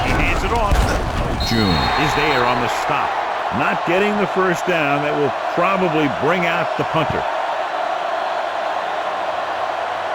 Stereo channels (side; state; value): both; identical; correlation 1.00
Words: He hands it off. June is there on the stop. Not getting the first down. That will probably bring out the punter.